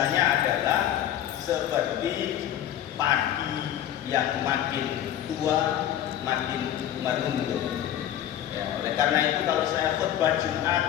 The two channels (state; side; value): quieter; right; 11.4 dB